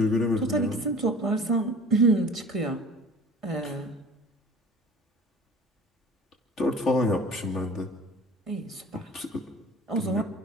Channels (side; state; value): both; normal; correlation 0.44